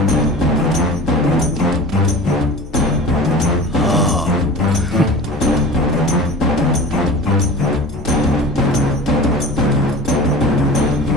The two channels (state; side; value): normal; both; correlation 0.37